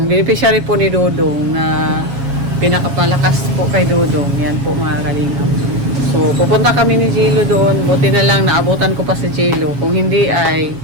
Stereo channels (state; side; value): late; left; 7.2 ms